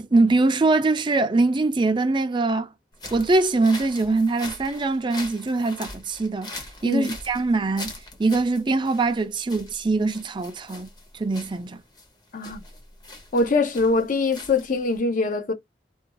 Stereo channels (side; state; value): both; normal; correlation 0.65